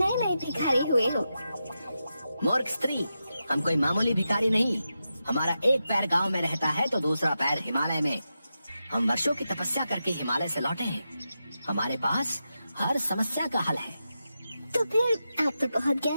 नए भिखारी हुए हो। मूर्ख स्त्री, हम कोई मामूली भिखारी नहीं। हमारा एक पैर गांव में रहता है तो दूसरा पैर हिमालय में। हम वर्षों की तपस्या करके हिमालय से लौटे हैं। हमारे पास हर समस्या का हल है। तो फिर आप तो बहुत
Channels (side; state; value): both; inverted; correlation -0.89